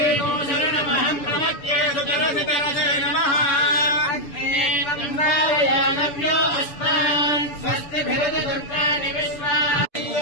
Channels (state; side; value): late; right; 6.9 ms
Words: శరణమహం ప్రపద్యే సుతరసితరసే నమః అగ్నేయం వారయామవ్యో అస్మాన్ స్వస్తిభిరతి దుర్గాని విశ్వాం